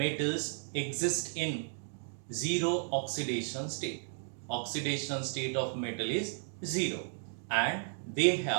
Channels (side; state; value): left; silent; digital silence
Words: exist in zero oxidation state. Oxidation state of metal is zero and they